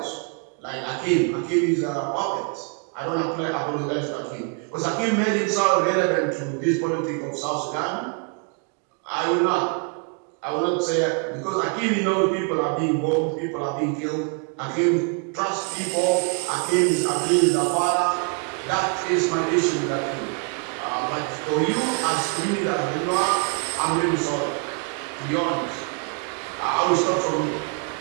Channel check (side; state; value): left; quieter; 36.1 dB